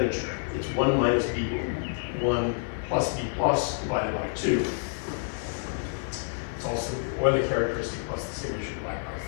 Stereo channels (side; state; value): right; silent; 57 dB below the other